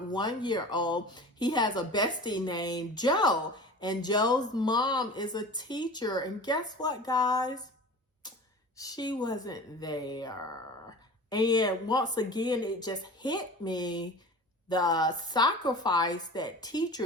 he has a bestie named Joe, and Joe's mom is a teacher. And guess what, guys? She wasn't there. And once again, it just hit me, the sacrifice that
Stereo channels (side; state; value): both; normal; correlation 0.37